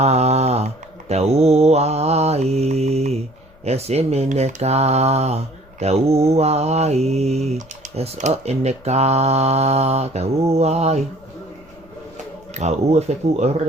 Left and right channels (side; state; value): left; noise; rumble, 27 dB below the sound